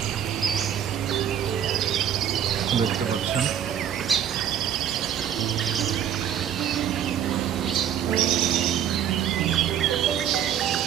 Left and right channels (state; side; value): quieter; left; 9.7 dB